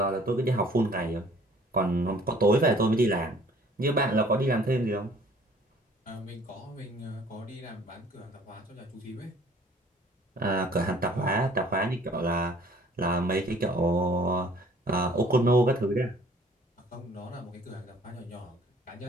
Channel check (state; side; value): normal; both; correlation 0.54